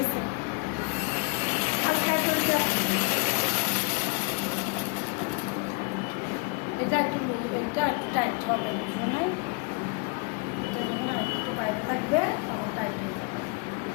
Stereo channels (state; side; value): quieter; right; 31.6 dB